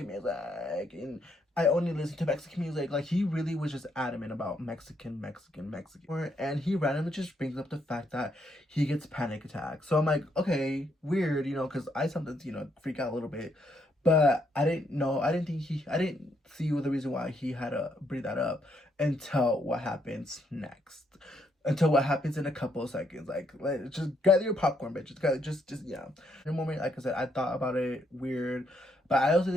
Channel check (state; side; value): normal; both; correlation 0.75